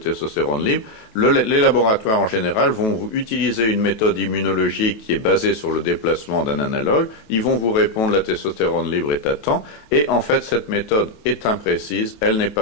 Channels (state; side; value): late; right; 28 ms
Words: libre, les laboratoires en général vont vous utiliser une méthode immunologique qui est basée sur le déplacement d'un analogue. Ils vont vous répondre la testostérone libre est à temps. Et en fait, cette méthode est imprécise, elle n'est